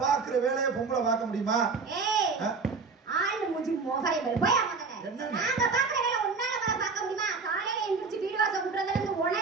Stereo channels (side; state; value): left; quieter; 4.6 dB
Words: பாக்குற வேலையை பொம்பளை பார்க்க முடியுமா? ஆளு மூஞ்சி மோகரை போய் என்ன நாங்க பாக்குற வேலை உன்னால பார்க்க முடியுமா? காலையில எந்திரிச்சு வீடு வாசல் கூட்டுறதுல இருந்து